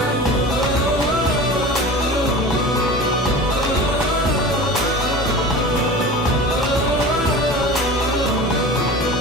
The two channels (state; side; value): normal; both; correlation 0.35